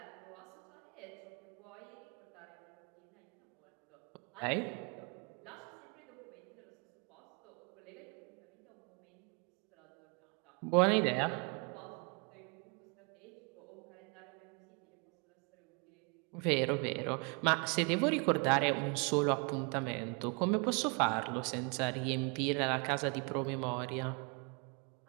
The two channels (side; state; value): left; quieter; 33.6 dB